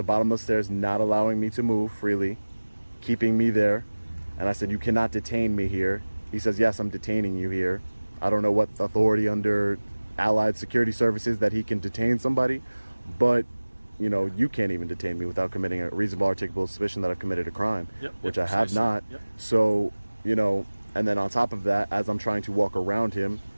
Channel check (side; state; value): both; inverted; correlation -1.00